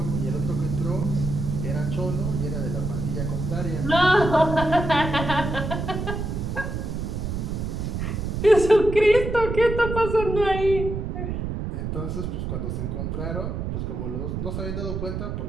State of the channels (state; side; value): noise; right; rumble, 3 dB below the sound